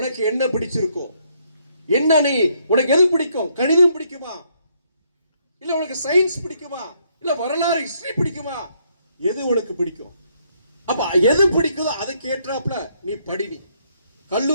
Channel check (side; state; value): both; inverted; correlation -0.71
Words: என்ன பிடிச்சிருக்கோ, என்ன நீ உனக்கு எது பிடிக்கும், கணிதம் பிடிக்குமா, இல்ல உனக்கு சயின்ஸ் பிடிக்குமா, இல்ல வரலாறு ஹிஸ்டரி பிடிக்குமா, எது உனக்கு பிடிக்கும், அப்ப எது பிடிக்குதோ அதுக்கு ஏற்றாப்புல நீ படி, நீ